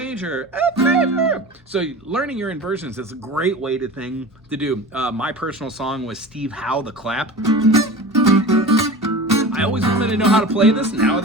F major. So learning your inversions is a great way to do. My personal song was Steve Howe, The Clap. I always wanted to know how to play this. Now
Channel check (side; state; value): both; normal; correlation 0.34